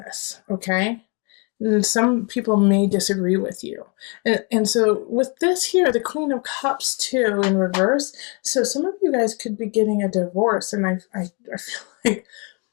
okay? And some people may disagree with you. And so with this here, the Queen of Cups too in reverse, so some of you guys could be getting a divorce, and I feel like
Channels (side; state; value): right; quieter; 33.4 dB